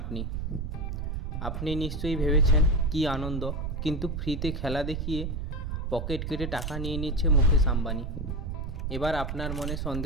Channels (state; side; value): noise; right; rumble, 4 dB below the sound